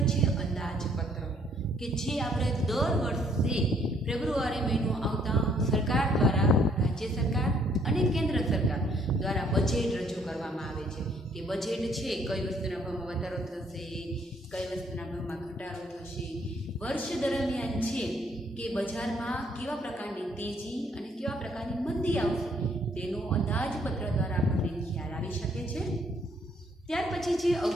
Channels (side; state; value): both; normal; correlation 0.65